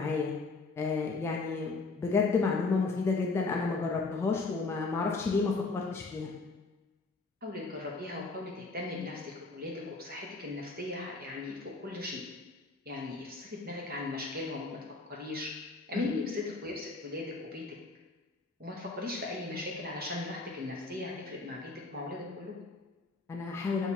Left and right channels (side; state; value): right; quieter; 3.7 dB